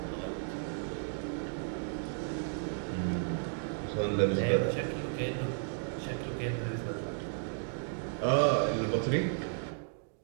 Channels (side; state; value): left; silent; digital silence